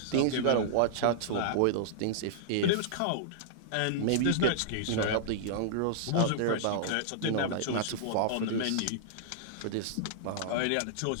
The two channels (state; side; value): different; both; correlation -0.02